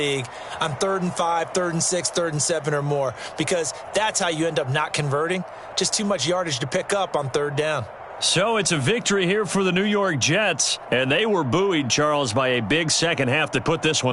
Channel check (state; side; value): identical; both; correlation 1.00